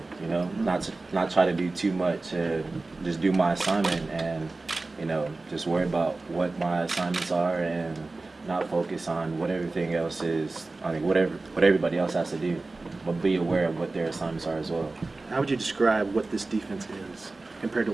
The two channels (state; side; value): quieter; left; 3.3 dB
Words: you know, not try to do too much, just do my assignment and, you know, just worry about what my assignments are and not focus on what everything else is, I mean, what everybody else has to do, but be aware of what their assignments are as well. How would you describe what this defense is compared to